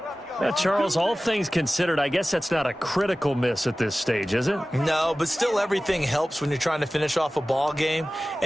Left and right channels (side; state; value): both; normal; correlation 0.97